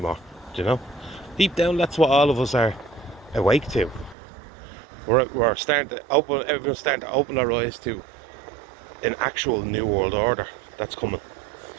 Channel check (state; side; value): drops out; left; at 4.2 s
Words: do you know? Deep down, that's what all of us are awake to. We're starting to open, everyone's starting to open their eyes to an actual new world order that's coming.